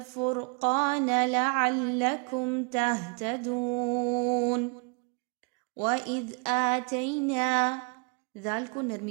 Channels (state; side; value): quieter; left; 33.9 dB